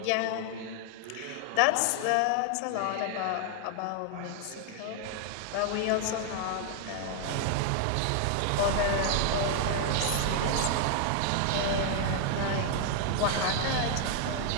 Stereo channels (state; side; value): different; both; correlation 0.00